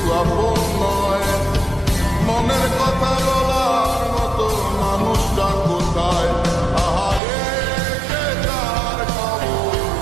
আপন নয়, মনের কথা বলার মতো মানুষটা কোথায়? আহারে সে তার খবর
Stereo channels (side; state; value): left; drops out; at 7.2 s